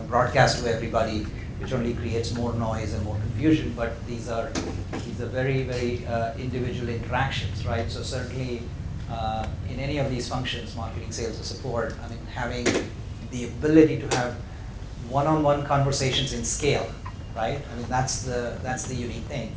broadcast to everybody, which only creates more noise and more confusion. But these are very, very individual interactions, right? So certainly in any of these functions, marketing, sales, or support, I mean, having the ability to have one-on-one conversations in scale, right? I mean, that's the unique thing.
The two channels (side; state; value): both; identical; correlation 1.00